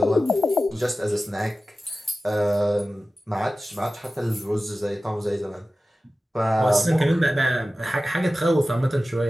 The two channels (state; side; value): normal; both; correlation 0.95